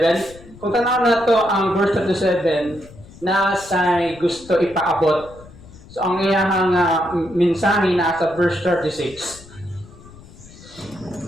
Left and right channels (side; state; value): left; noise; rumble, 21 dB below the sound